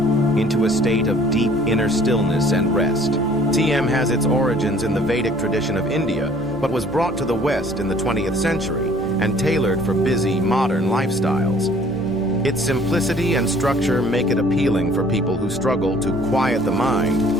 into a state of deep inner stillness and rest. TM has its origins in the Vedic tradition of India, but was brought to the West in the 20th century and tailored for busy, modern lifestyles. Its simplicity and structure make it appealing for people who struggle to quiet the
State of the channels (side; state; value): left; noise; rumble, 18 dB below the sound